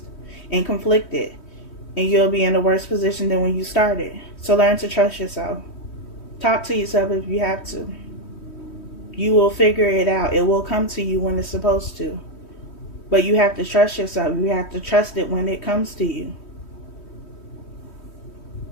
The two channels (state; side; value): late; right; 3.1 ms